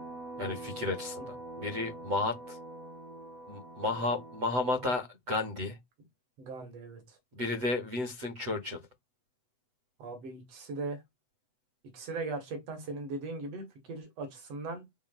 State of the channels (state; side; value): late; left; 8.0 ms